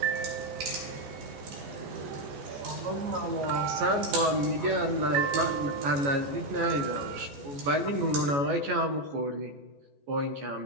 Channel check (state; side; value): late; left; 14 ms